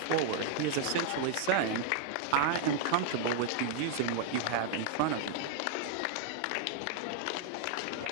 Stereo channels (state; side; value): different; both; correlation 0.00